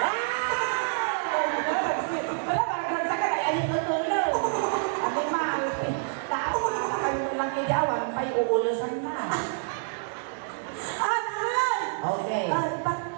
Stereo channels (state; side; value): silent; left; digital silence